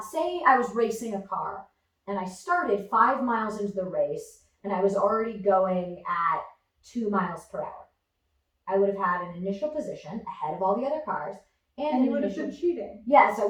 was racing a car and I started 5 miles into the race and I was already going at 2 miles per hour. I would have had an initial position ahead of all the other cars And you would have been cheating. Yes, I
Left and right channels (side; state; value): both; identical; correlation 1.00